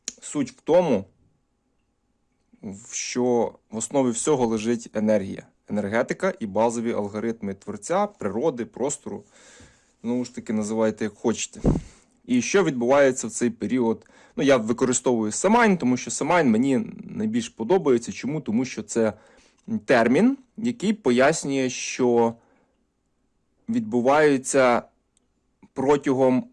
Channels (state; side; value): identical; both; correlation 1.00